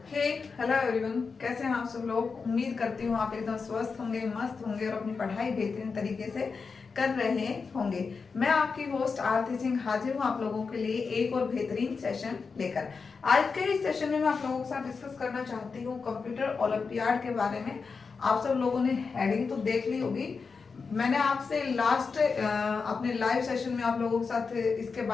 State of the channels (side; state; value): right; quieter; 5.0 dB